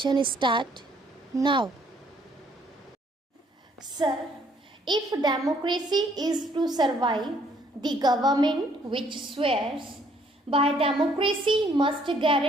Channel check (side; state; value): both; normal; correlation 0.64